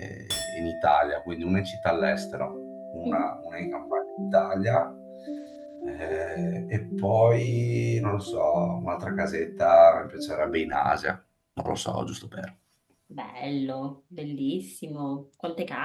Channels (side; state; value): both; identical; correlation 1.00